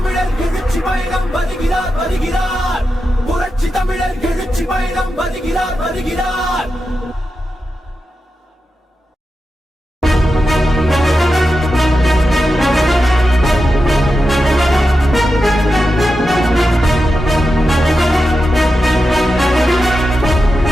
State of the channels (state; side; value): normal; both; correlation 0.90